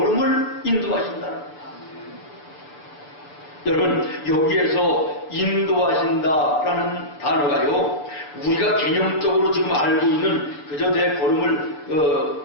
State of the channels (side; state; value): right; late; 6.8 ms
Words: 인도하신다는 거예요. 여러분, 여기에서 인도하신다라는 단어가요, 우리가 개념적으로 지금 알고 있는 그저 내 걸음을